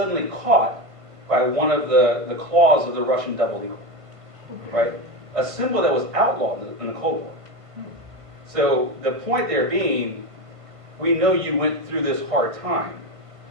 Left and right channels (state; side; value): late; left; 1.5 ms